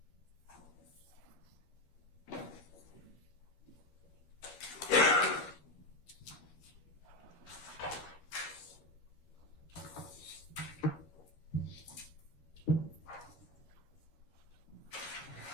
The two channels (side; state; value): right; late; 12 ms